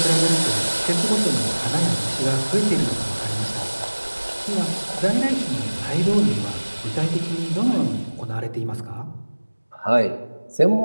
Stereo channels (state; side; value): inverted; both; correlation -1.00